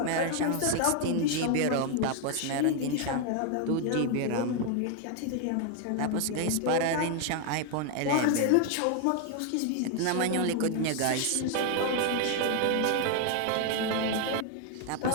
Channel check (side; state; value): both; different; correlation 0.00